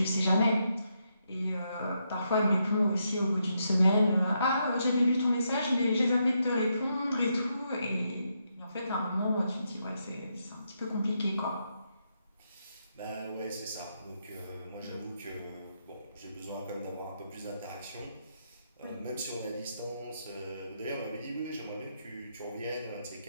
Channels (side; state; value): both; inverted; correlation -0.80